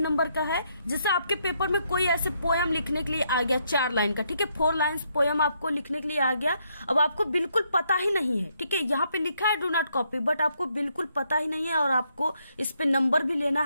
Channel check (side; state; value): both; inverted; correlation -0.75